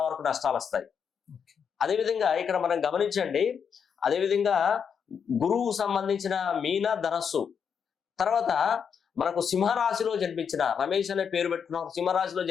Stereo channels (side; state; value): right; quieter; 7.0 dB